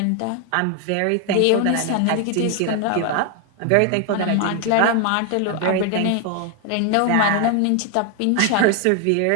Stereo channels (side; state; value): both; different; correlation 0.00